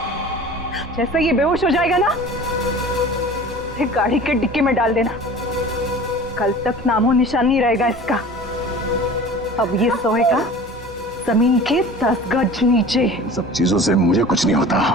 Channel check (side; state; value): both; normal; correlation 0.41